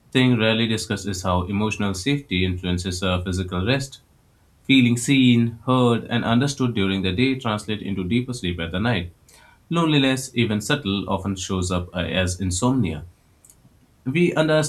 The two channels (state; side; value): identical; both; correlation 1.00